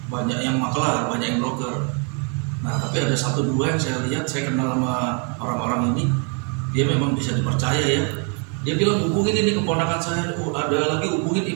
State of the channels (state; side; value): quieter; left; 37.7 dB